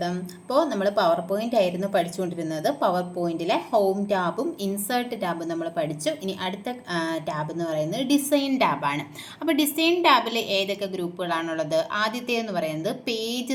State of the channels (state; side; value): identical; both; correlation 1.00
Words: അപ്പോൾ നമ്മൾ പവർ പോയിന്റ് ആയിരുന്നു പഠിച്ചുകൊണ്ടിരുന്നത്. പവർ പോയിന്റിലെ ഹോം ടാബും ഇൻസേർട്ട് ടാബും നമ്മൾ പഠിച്ചു. ഇനി അടുത്ത ടാബ് എന്ന് പറയുന്നത് ഡിസൈൻ ടാബാണ്. അപ്പോൾ ഡിസൈൻ ടാബിൽ ഏതൊക്കെ ഗ്രൂപ്പുകളാണുള്ളത്? ആദ്യത്തേതെന്ന് പറയുന്നത്